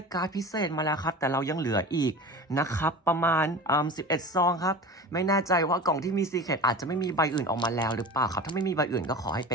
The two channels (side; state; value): both; normal; correlation 0.33